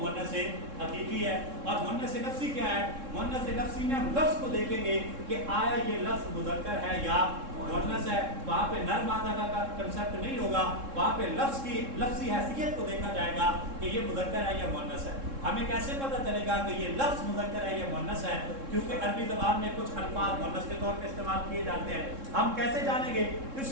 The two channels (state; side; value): late; left; 3.7 ms